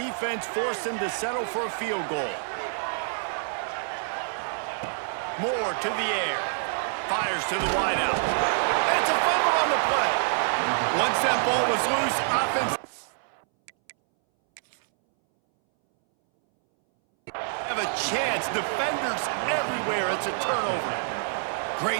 force them to settle for a field goal? Moore to the air. Fires to the wideout. It's a fumble on the play. Once that ball was loose, offense have a chance. Defenders everywhere. It's a turnover.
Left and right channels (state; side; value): silent; left; 60 dB below the other